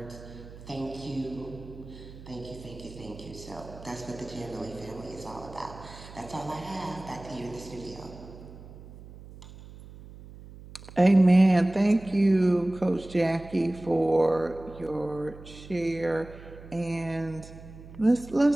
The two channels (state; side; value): noise; right; hum, 17 dB below the sound